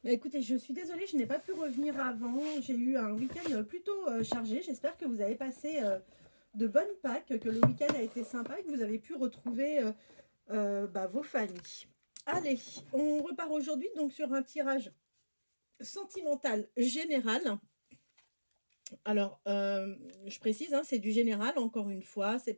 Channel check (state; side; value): inverted; both; correlation -1.00